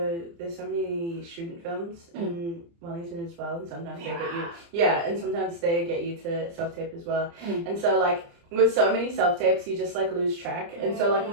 there's so many student films in Wellington as well, and sometimes they get you and sometimes they get you to self-tape as well. And so like with so many self-tapes you just like lose track, and so like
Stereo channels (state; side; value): late; left; 29 ms